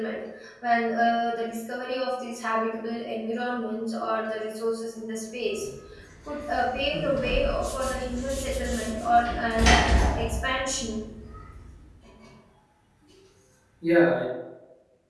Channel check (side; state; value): both; identical; correlation 1.00